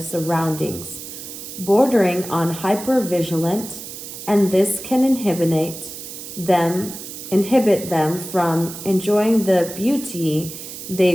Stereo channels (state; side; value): noise; right; hiss, 11 dB below the sound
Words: bordering on hyper-vigilant, and this can inhibit them from enjoying the beauty